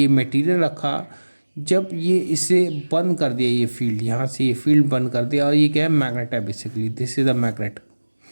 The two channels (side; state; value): both; inverted; correlation -1.00